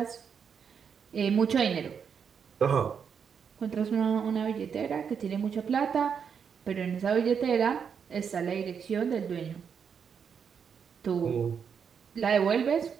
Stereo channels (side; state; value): left; quieter; 6.9 dB